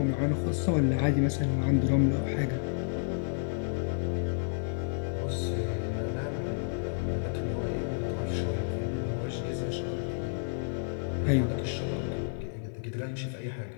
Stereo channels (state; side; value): silent; right; 57 dB below the other